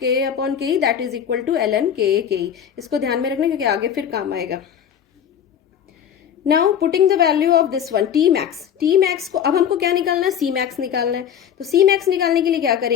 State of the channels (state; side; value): quieter; right; 8.8 dB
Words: upon K E that is equal to ln K ई, इसको ध्यान में रखना क्योंकि आगे फिर काम आएगा। Now putting the value of this one T max को अब हमको क्या निकालना है, सी मैक्स निकालना है। तो सी मैक्स निकालने के लिए क्या